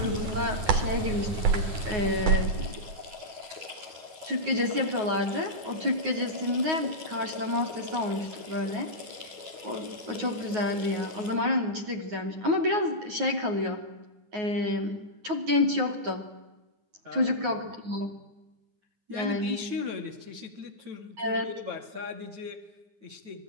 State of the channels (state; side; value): late; left; 9.4 ms